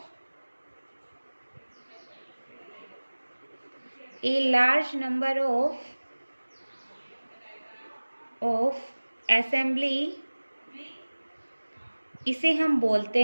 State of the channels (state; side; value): inverted; both; correlation -1.00